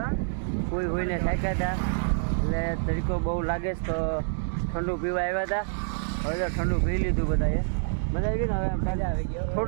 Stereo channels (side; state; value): left; silent; digital silence